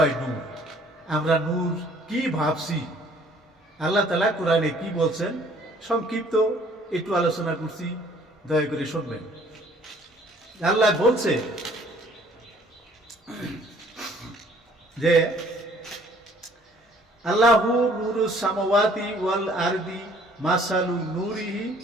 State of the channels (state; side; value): normal; both; correlation 0.58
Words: নূর, আমরা নূর কি ভাবছি, আল্লাহ তাআলা কোরআনে কি বলছেন সংক্ষিপ্ত একটু আলোচনা করছি, দয়া করে শুনবেন। আল্লাহ বলছে যে আল্লাহু নূরুস সামাওয়াতি ওয়াল আরদি মাসালু নূরিহি